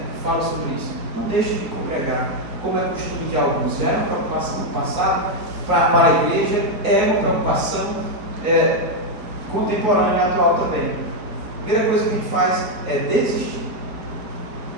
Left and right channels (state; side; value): late; left; 4.2 ms